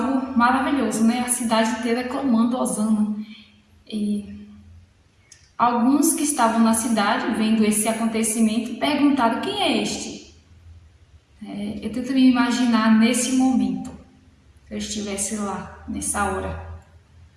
maravilhoso, a cidade inteira clamando Hosana. E alguns que estavam na cidade, vendo esse acontecimento, perguntaram: quem é este? Eu tento me imaginar nesse momento, se eu estivesse lá, nessa hora.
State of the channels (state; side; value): identical; both; correlation 1.00